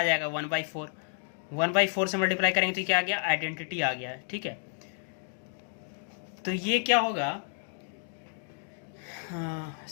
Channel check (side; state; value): right; silent; 57 dB below the other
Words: जाएगा, 1/4। 1/4 से मल्टीप्लाई करेंगे तो क्या आ गया, आइडेंटिटी आ गया है, ठीक है। तो ये क्या होगा,